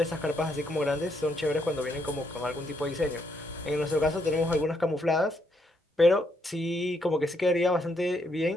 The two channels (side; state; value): both; normal; correlation 0.75